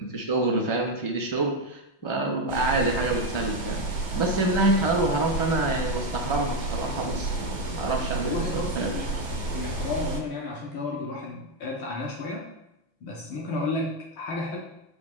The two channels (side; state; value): right; late; 6.0 ms